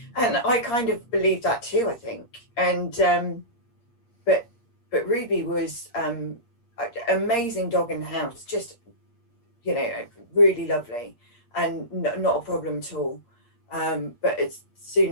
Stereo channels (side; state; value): right; late; 8.5 ms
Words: And I kind of believe that too, I think. And but Ruby was amazing dog in the house, just really lovely, and not a problem at all. But as